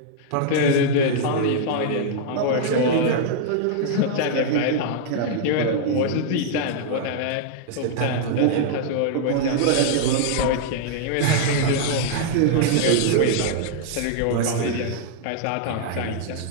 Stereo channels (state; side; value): different; both; correlation -0.01